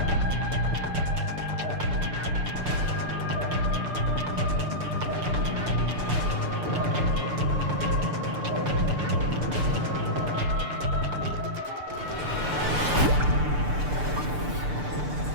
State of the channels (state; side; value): late; left; 6.8 ms